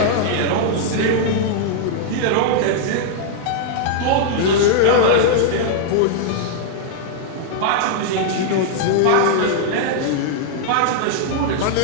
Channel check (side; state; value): both; different; correlation -0.01